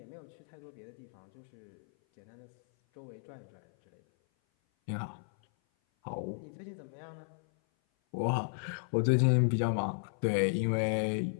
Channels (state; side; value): silent; right; 55 dB below the other